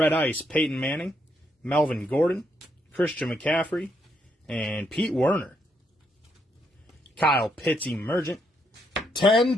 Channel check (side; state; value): both; normal; correlation 0.76